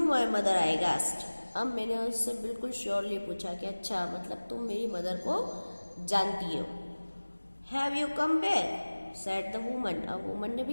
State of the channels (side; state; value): both; inverted; correlation -1.00